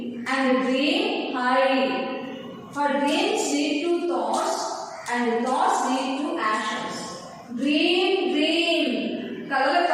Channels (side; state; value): both; identical; correlation 1.00